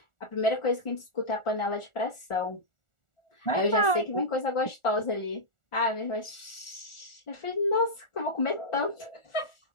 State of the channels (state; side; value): late; right; 1.4 ms